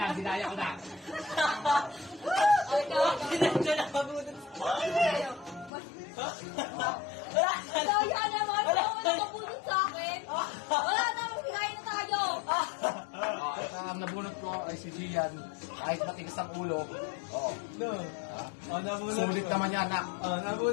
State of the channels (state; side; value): drops out; right; at 5.7 s